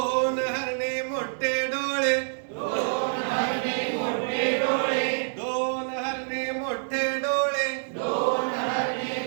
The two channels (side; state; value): left; silent; digital silence